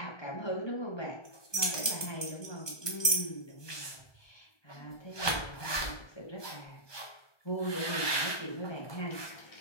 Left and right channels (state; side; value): late; right; 1.2 ms